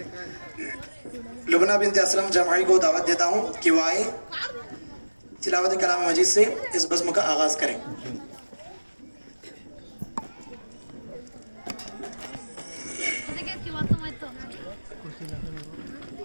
لبنہ بنت اسلم جمعی کو دعوت دیتا ہوں کہ وہ آئے تلاوت کلام مجید سے اس بزم کا آغاز کریں۔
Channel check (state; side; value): inverted; both; correlation -1.00